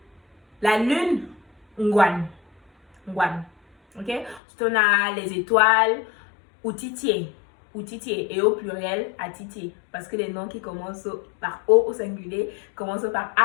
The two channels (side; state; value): right; drops out; at 4.4 s